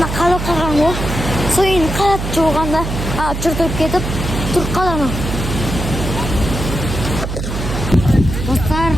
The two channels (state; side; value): noise; right; hum, 4 dB below the sound